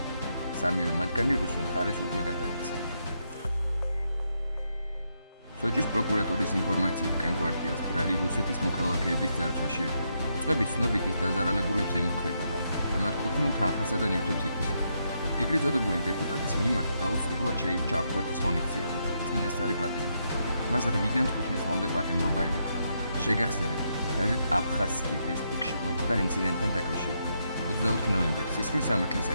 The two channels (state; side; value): inverted; both; correlation -0.80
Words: სამივე მათგანი რუსულ მხარეს უკვე გადაეცა. სოჭის პროკურატურის ინფორმაციით კანკვარტიას ბრალი რუსეთის მოქალაქეების ძარცვაში ედება. უწყების ცნობით ის დაზარალებულებს ემუქრებოდა და მათ კუთვნილ თანხასა და ნივთებს ითვისებდა. ეგრეთ წოდებული დეპუტატის მიმართ დაუსრულებლად შეირჩა აღკვეთის ღონისძიება, წინასწარი პატიმრობა. მას 8-დან 15 წლამდე პატიმრობა ემუქრებოდა. შეგახსენებთ, გაზეთ აფხაზსკი ვესტიკში მომხდარ ინციდენტთან დაკავშირებით. 24 ნოემბერს სისხლის სამართლის